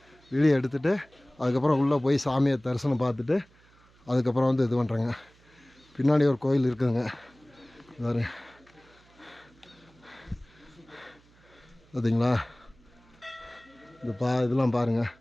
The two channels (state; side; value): noise; right; hum, 29 dB below the sound